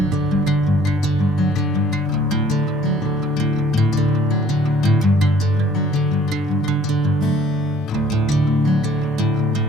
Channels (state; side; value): normal; both; correlation 0.57